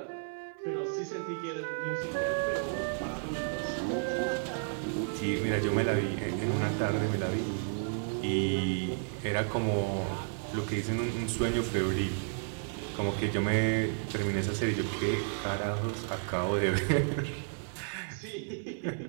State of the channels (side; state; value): left; silent; 56 dB below the other